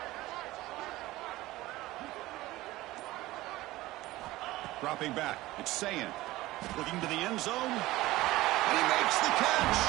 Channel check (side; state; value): left; quieter; 17.9 dB